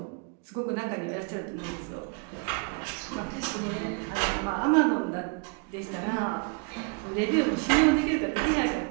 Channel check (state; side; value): quieter; left; 37.0 dB